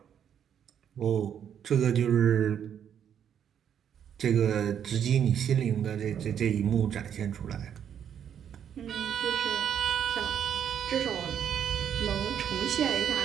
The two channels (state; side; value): quieter; left; 8.9 dB